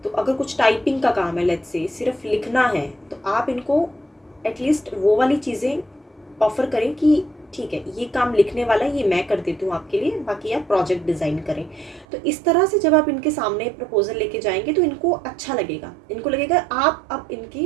तो अगर कुछ टाइपिंग का काम है, लेट्स से सिर्फ लिखना है, तो आप इनको एटलीस्ट वो वाली चीज़ें ऑफ़र करें कि ठीक है ये काम लिखने वाला है, ये मैं कर देती हूँ आपके लिए, बाकी आप प्रोजेक्ट डिज़ाइन करें। तो इस तरह से जब आप इनके सामने प्रपोजल लेके जाएंगे तो इनको अच्छा लगेगा, इनको लगेगा आप अब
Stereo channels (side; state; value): left; drops out; at 12.1 s